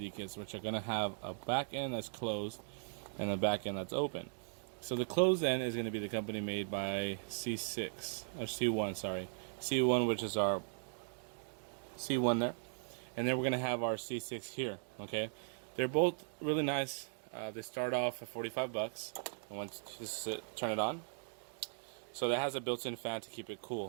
kits, which are going to have a back end that's closed and a back end that's open. So the closed end is going to be the company made by C6 or C1, sorry, C1, which is our C1 there, and then we're going to have our C6 here. Okay, they're both really nice. They start off at 45 bucks, and once you just turn it on, so that has a built-in fan to keep it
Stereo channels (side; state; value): left; silent; digital silence